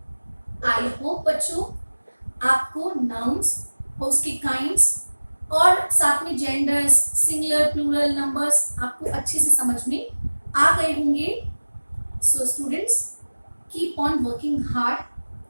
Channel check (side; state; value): both; inverted; correlation -1.00